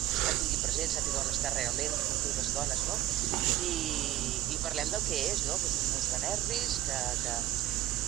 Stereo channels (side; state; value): left; quieter; 14.4 dB